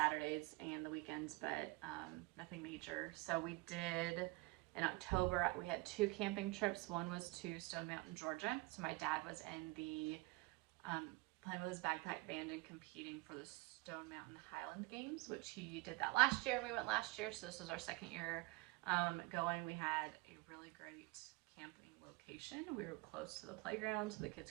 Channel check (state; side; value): quieter; left; 23.5 dB